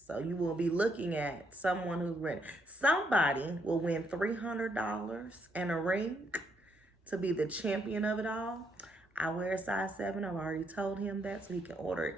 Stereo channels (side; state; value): both; normal; correlation 0.75